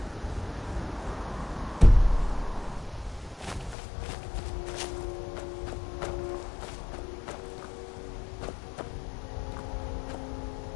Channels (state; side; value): drops out; right; at 3.8 s